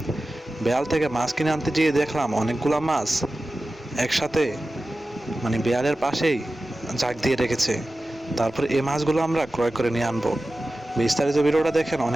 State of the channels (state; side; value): normal; both; correlation 0.95